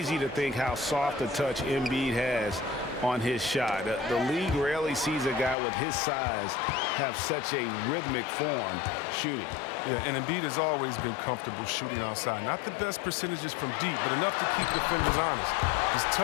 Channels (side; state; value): right; drops out; at 5.6 s